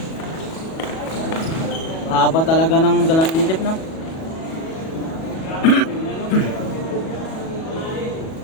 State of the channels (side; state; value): right; late; 37 ms